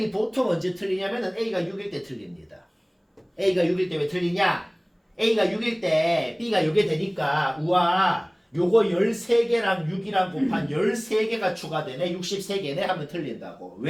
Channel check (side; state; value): both; identical; correlation 1.00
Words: 보통 언제 틀리냐면은 A가 6일 때 틀립니다. A가 6일 때 왜 틀리냐? A가 6일 때 B가 요게 되니까 우와 요거 13개랑 6이랑 곱한 13개가 추가되네 63개네 하면 틀린다고.